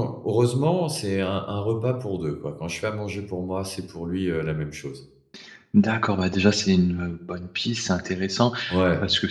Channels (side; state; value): both; identical; correlation 1.00